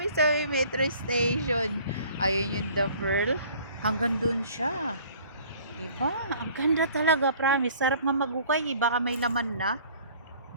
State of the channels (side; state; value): both; inverted; correlation -0.52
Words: sa metro station. Ayun yung The Pearl. Hanggang dun siya. Diba? Ang ganda talaga, promise. Sarap nga magukay. Baka may laman na.